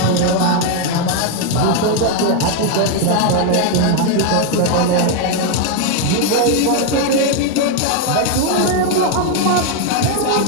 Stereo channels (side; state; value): both; different; correlation 0.01